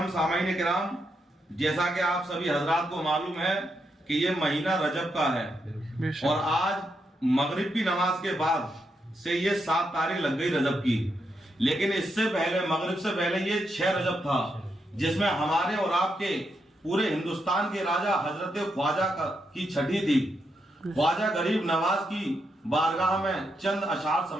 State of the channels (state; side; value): normal; both; correlation 0.82